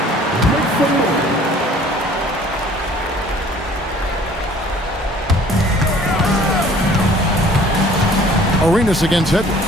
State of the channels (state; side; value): normal; both; correlation 0.52